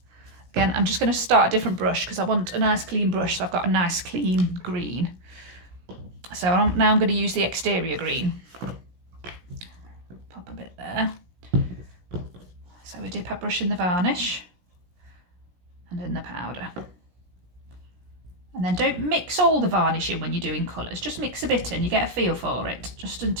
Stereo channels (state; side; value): late; left; 17 ms